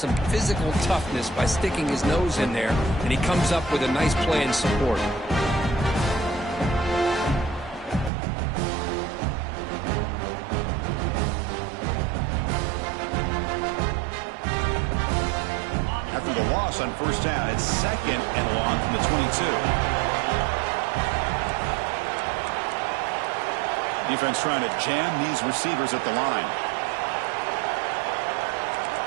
physical toughness by sticking his nose in there, and he comes up with a nice play in support. After the loss on first down, it's 2nd and long from the 22. Defense trying to jam these receivers at the line.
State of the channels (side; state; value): left; drops out; at 8.1 s